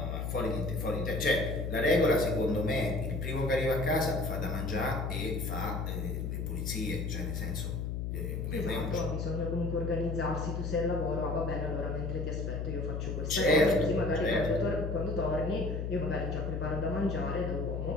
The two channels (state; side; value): noise; left; hum, 2 dB below the sound